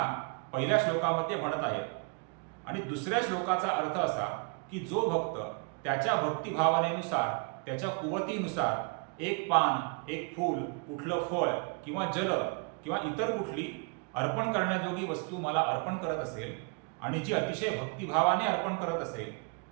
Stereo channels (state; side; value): quieter; left; 35.5 dB